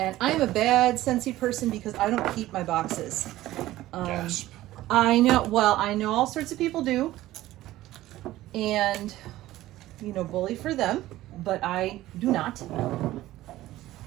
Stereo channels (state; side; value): quieter; left; 15.7 dB